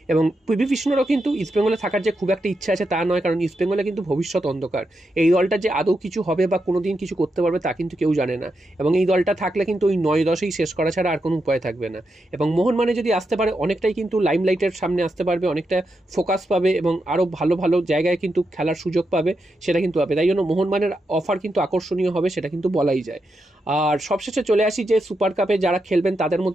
এবং পিভি বিষ্ণুরও কিন্তু ইস্টবেঙ্গলে থাকার যে খুব একটা ইচ্ছা আছে তা নয়, কারণ ইস্টবেঙ্গলে কিন্তু ভবিষ্যৎ অন্ধকার। এই দলটা যে আদৌ কিছু হবে বা কোনোদিন কিছু করতে পারবে তা কিন্তু কেউ জানে না, এবং এই দলটা থাকলে কিন্তু ওই 9-10এই শেষ করা ছাড়া আর কোনো উপায় থাকবে না। এবং মোহনবাগানে যদি আসতে পারে, অনেকটাই কিন্তু লাইমলাইটের সামনে আসতে পারবে, অনেকটা ফোকাস পাবে, এবং আরও ভালো ভালো জায়গায় কিন্তু খেলার সুযোগ পাবে, সেটা কিন্তু পাবে। তাই জন্য মোহনবাগানের অফার কিন্তু আকর্ষণীয় হবে, সেটা কিন্তু বলাই যায়। আর সবশেষে চলে আসি যে সুপার কাপে কাপে যারা খেলবেন তাদের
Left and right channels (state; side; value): normal; both; correlation 0.85